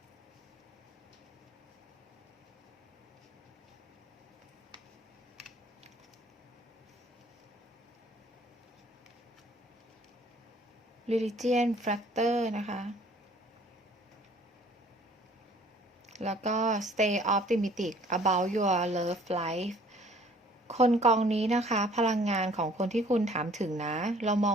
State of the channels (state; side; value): normal; both; correlation 0.55